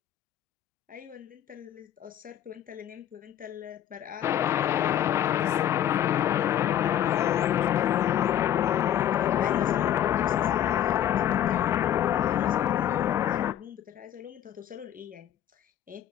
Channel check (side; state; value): right; quieter; 10.9 dB